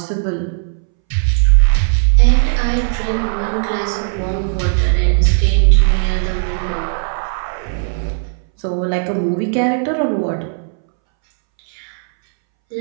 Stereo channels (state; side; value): silent; left; 66 dB below the other